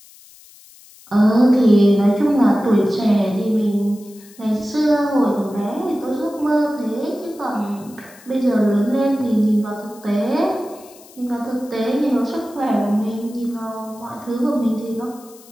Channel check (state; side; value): noise; left; hiss, 24 dB below the sound